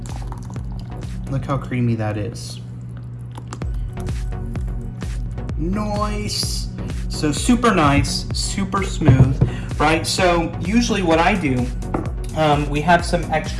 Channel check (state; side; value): identical; both; correlation 1.00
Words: look how creamy that is. Nice. So super nice, super smooth, right? So usually what I do, we have some